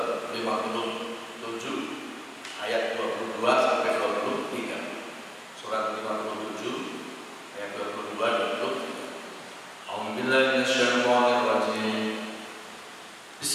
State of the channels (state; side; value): identical; both; correlation 1.00